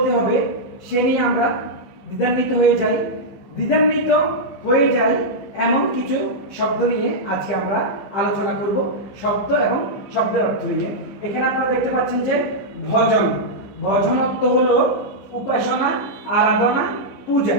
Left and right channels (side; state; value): right; late; 15 ms